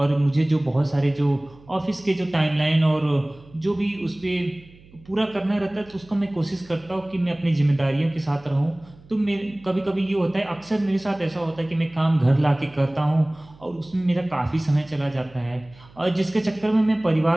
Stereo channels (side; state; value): right; noise; hum, 25 dB below the sound